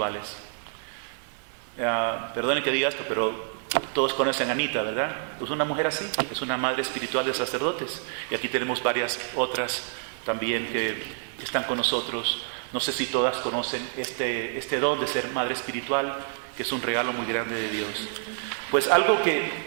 Perdone que diga esto, pero todos conocen a Anita, ¿verdad? Pues una mujer así, es una madre espiritual de sacerdotes. Y aquí tenemos varias otras también que están con nosotros. No sé si todas conocen este don de ser madre espiritual, que es un regalo muy grande de Dios. Pues algo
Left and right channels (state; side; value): silent; left; digital silence